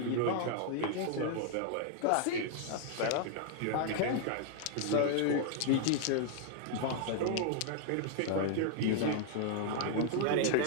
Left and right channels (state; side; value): different; both; correlation 0.00